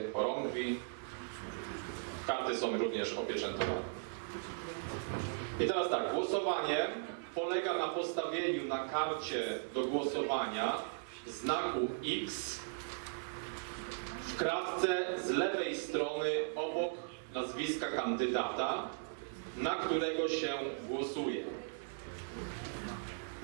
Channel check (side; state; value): left; silent; digital silence